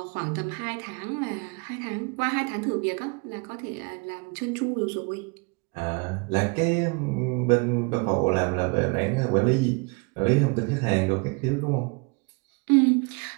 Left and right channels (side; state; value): left; quieter; 31.2 dB